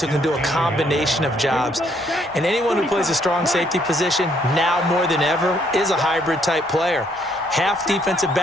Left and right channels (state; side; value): normal; both; correlation 0.69